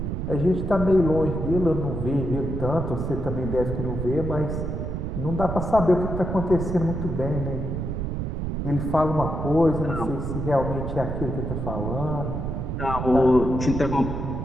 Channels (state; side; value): noise; right; rumble, 3 dB below the sound